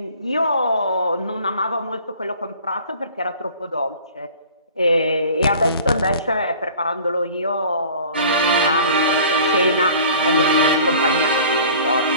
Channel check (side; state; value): both; inverted; correlation -0.47